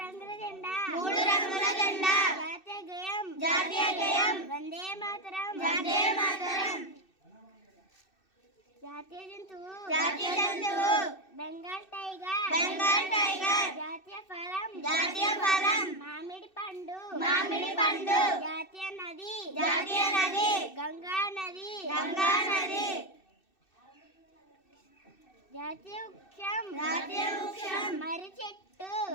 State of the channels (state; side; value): late; right; 2.6 ms